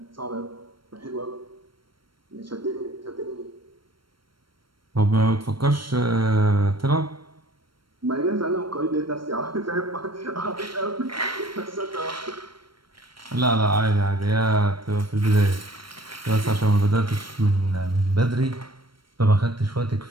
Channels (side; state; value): left; late; 0.73 ms